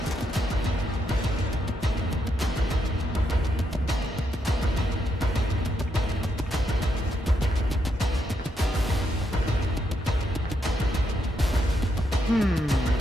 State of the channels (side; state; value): both; normal; correlation 0.79